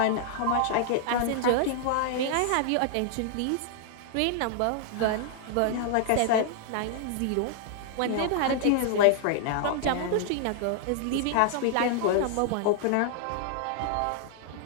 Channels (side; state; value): both; different; correlation -0.01